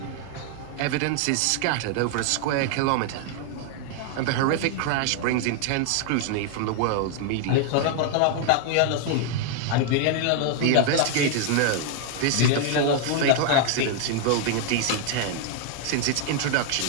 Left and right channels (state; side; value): different; both; correlation 0.00